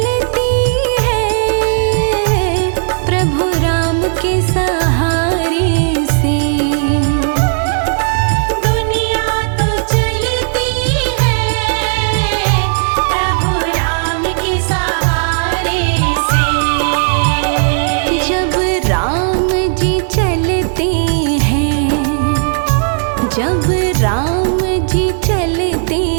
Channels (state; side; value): silent; left; digital silence